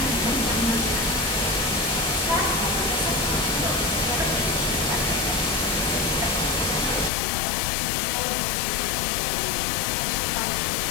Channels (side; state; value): right; drops out; at 7.1 s